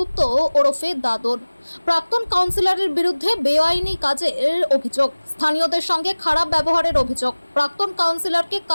ওরফে দাদর। প্রাক্তন কাউন্সিলরের বিরুদ্ধে বেআইনি কাজের অভিযোগ, স্থানীয়দের সঙ্গে খারাপ ব্যবহারের অভিযোগ। প্রাক্তন কাউন্সিলরকে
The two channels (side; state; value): both; inverted; correlation -1.00